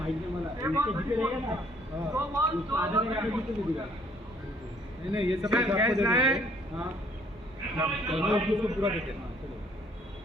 नाही मला इथे जिथे रहेगा ना उसको आधा में आधा जिथे भी दिला नहीं ये सब कैच लाए. हां उसको पूरा देते.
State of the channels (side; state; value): both; normal; correlation 0.62